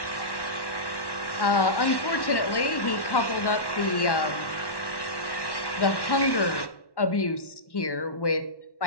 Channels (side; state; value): right; late; 1.1 ms